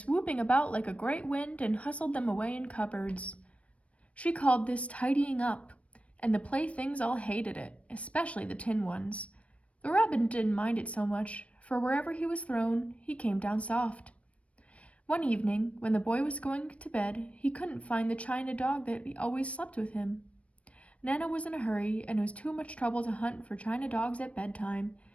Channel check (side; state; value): right; late; 0.064 ms